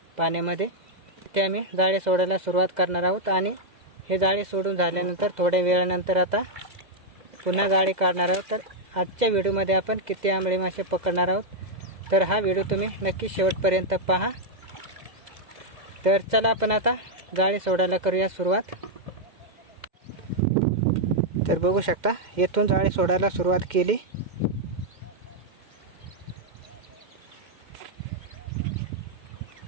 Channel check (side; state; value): left; late; 2.0 ms